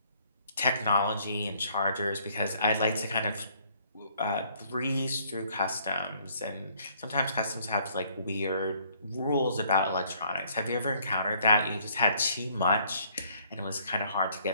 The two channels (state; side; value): inverted; both; correlation -0.63